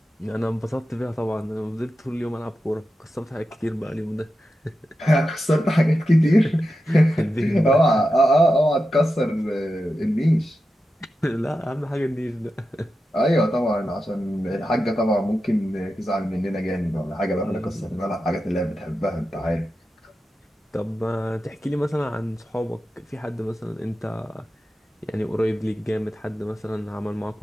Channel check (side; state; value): both; normal; correlation 0.90